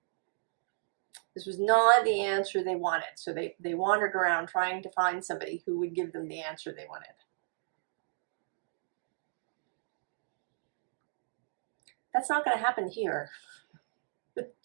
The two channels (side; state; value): left; silent; digital silence